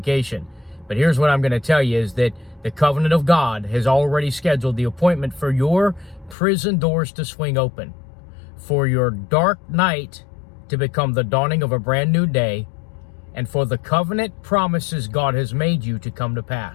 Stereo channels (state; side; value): drops out; right; at 6.4 s